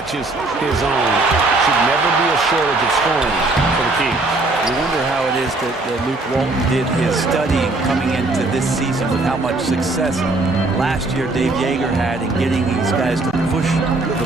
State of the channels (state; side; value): quieter; left; 3.1 dB